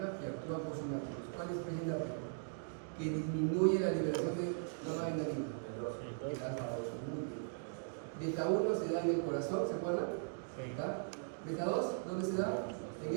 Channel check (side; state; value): left; silent; digital silence